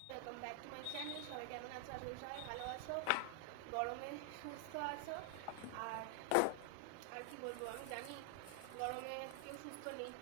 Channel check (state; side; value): different; both; correlation 0.00